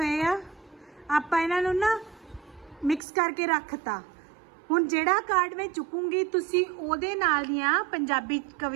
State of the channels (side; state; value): left; drops out; at 3.0 s